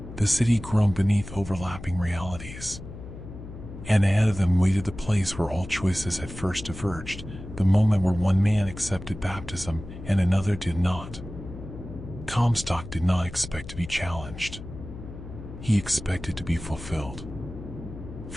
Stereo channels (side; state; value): left; noise; hum, 12 dB below the sound